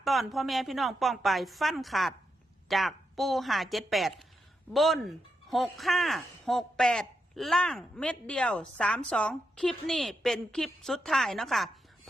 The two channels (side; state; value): both; normal; correlation 0.84